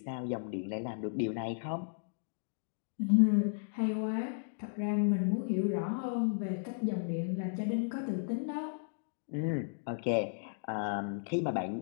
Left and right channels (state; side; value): silent; right; digital silence